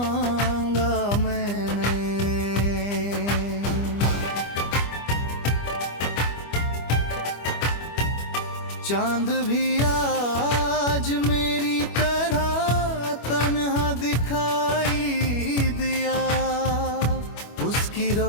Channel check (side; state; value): right; late; 25 ms